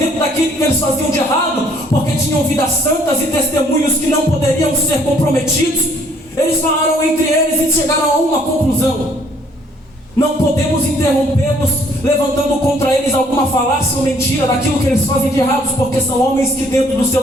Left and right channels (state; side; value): normal; both; correlation 0.62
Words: daquilo que eles faziam de errado, porque tinham vidas santas e testemunhos que não poderiam ser comprometidos, eles falaram entre eles e chegaram a uma conclusão: não podemos interrompê-los levantando contra eles alguma falácia ou mentira daquilo que eles fazem de errados, porque são homens que dentro do seu